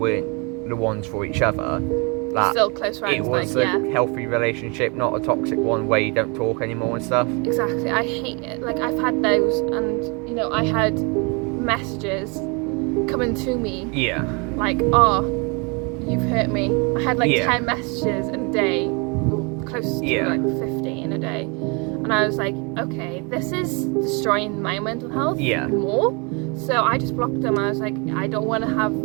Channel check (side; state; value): left; quieter; 31.4 dB